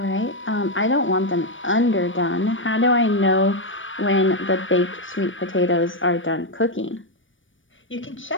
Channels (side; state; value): right; late; 0.56 ms